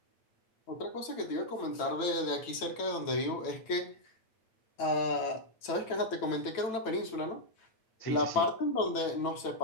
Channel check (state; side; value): late; right; 9.0 ms